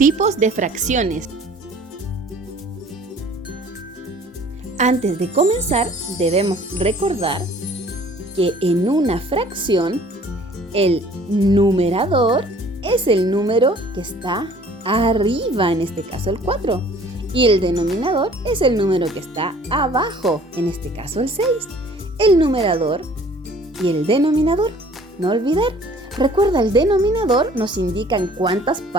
de fracciones. Antes de comenzar, debemos recordar que en una fracción, el numerador es el número que está arriba, en este caso el 4, y el denominador es el número que está abajo, en este caso el 6. El numerador y el denominador, no olvidar. Recuerda, el denominador nos indica en cuántas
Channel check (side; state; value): both; normal; correlation 0.52